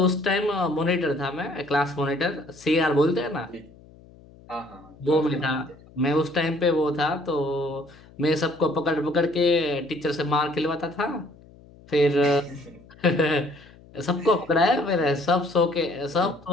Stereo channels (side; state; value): left; noise; hum, 24 dB below the sound